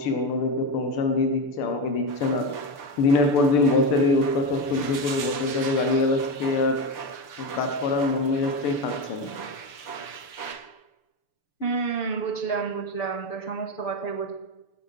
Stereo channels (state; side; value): late; right; 6.8 ms